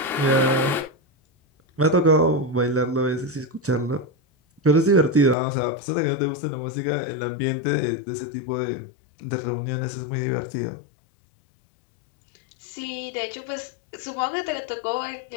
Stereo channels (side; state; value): right; drops out; at 5.4 s